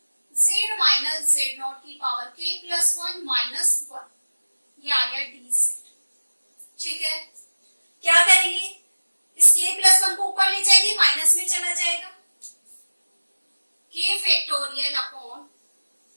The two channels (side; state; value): both; inverted; correlation -1.00